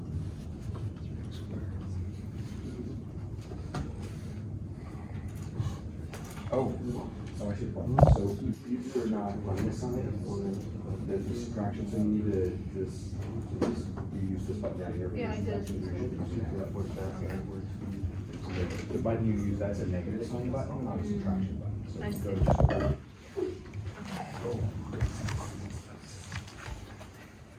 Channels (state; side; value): identical; both; correlation 1.00